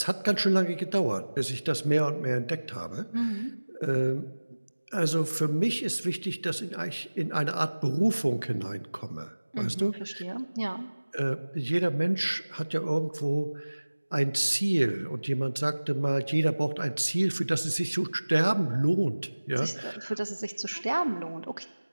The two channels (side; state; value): both; inverted; correlation -1.00